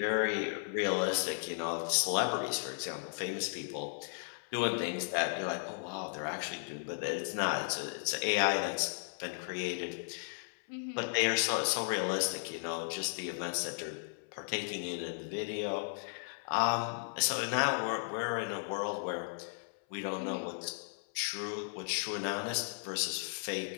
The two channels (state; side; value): silent; right; 54 dB below the other